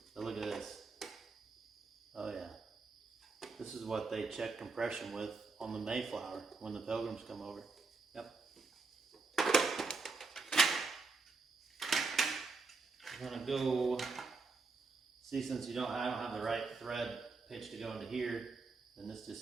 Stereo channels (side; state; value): left; quieter; 4.1 dB